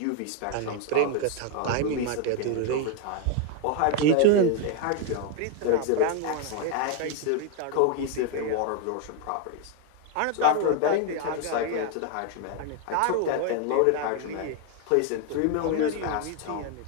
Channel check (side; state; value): both; different; correlation 0.01